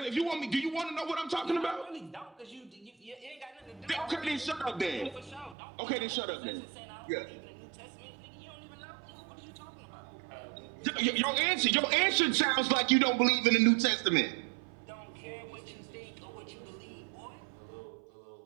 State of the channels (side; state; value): left; drops out; at 5.6 s